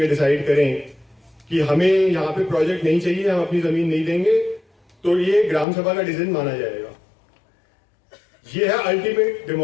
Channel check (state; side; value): drops out; right; at 5.7 s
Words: डिसाइड करें कि हमें यहाँ पे प्रोजेक्ट नहीं चाहिए, हम अपनी जमीन नहीं देंगे, तो ये ग्राम सभा का डिसीजन माना जाएगा। ये है अल्टीमेट